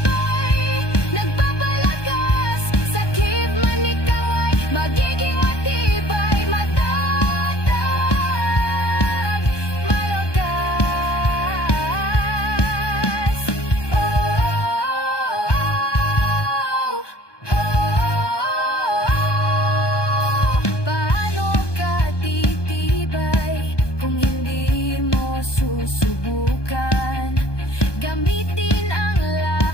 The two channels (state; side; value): late; right; 1.2 ms